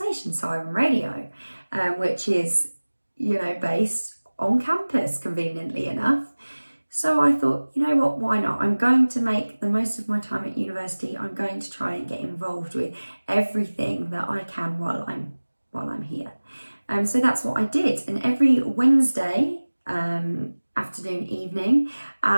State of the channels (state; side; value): inverted; both; correlation -1.00